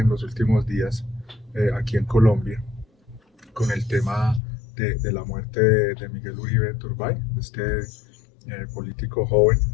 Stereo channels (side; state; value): right; drops out; at 4.4 s